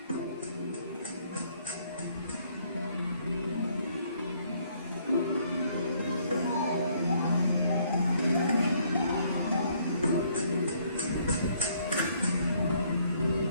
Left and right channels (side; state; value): both; inverted; correlation -0.66